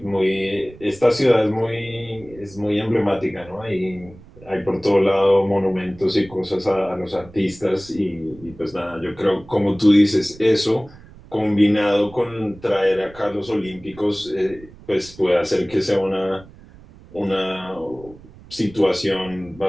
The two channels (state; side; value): noise; right; rumble, 21 dB below the sound